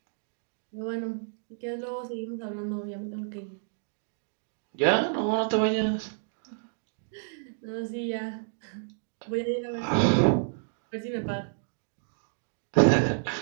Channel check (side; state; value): left; silent; digital silence